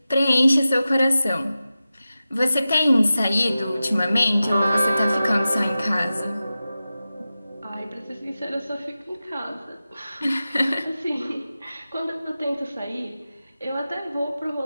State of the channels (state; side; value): inverted; both; correlation -0.94